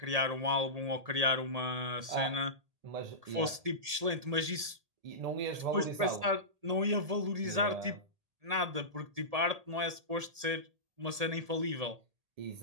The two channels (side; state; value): left; late; 1.8 ms